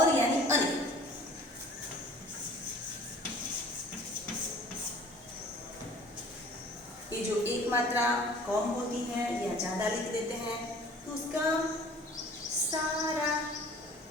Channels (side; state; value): both; normal; correlation 0.48